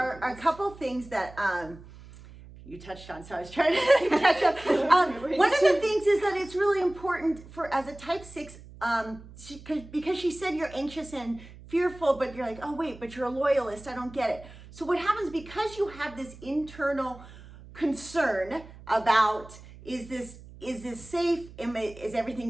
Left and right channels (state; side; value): noise; right; hum, 18 dB below the sound